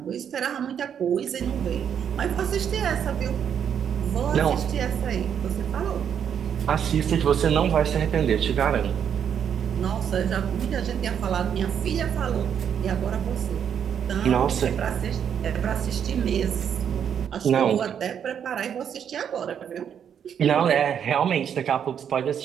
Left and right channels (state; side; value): quieter; left; 8.3 dB